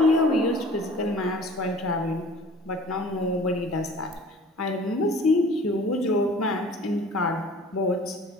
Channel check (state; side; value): normal; both; correlation 0.47